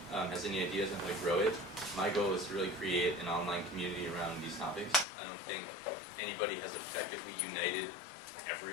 has any ideas on how to grow it, my goal is to really create an online community around these topics. I don't think anybody has effectively united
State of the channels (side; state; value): right; drops out; at 5.1 s